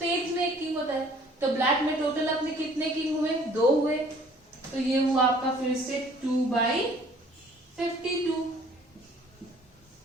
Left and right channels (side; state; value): both; normal; correlation 0.55